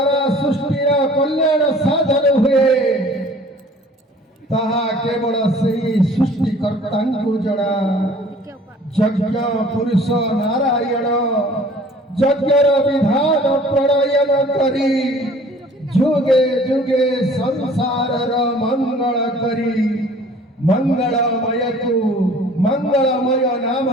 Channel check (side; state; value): both; normal; correlation 0.51